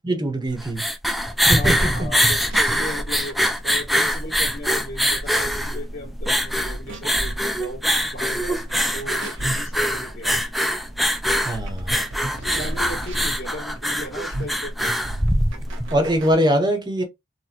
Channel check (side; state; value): both; normal; correlation 0.81